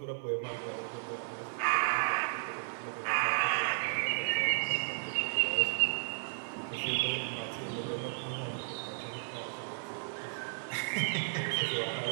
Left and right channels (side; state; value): left; silent; 55 dB below the other